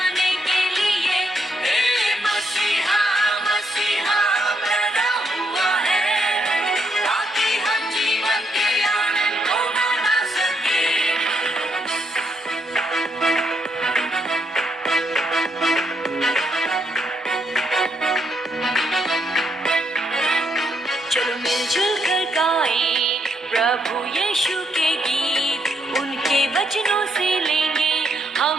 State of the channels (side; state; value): both; normal; correlation 0.76